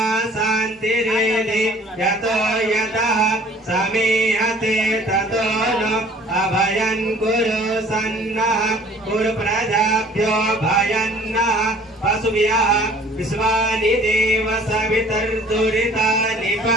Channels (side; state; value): both; normal; correlation 0.52